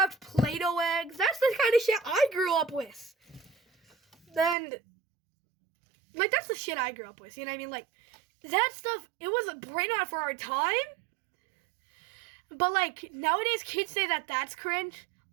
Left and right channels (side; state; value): left; drops out; at 4.5 s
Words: Play-Doh eggs. That's the kind of shit I grew up with. Then, like, that's the shit I grew up with. You know what I mean? Like, that stuff, it was a Brainrot for our time. But, like, nowadays kids say that that's cringe.